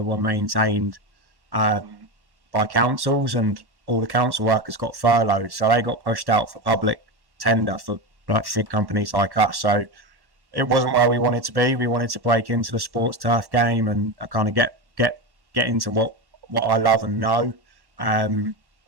were maintained by councils, and all the council workers got furloughed, so they got pushed out for public tender for like big companies like us. So it wasn't where we wanted to be. We wanted to break into the sports turf game and kind of get into what I love and know.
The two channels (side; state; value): left; late; 1.1 ms